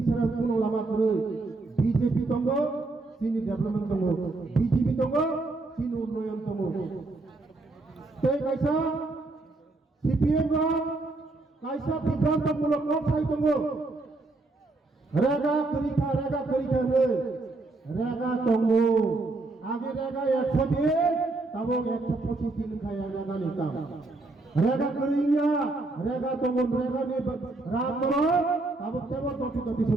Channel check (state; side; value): quieter; left; 3.2 dB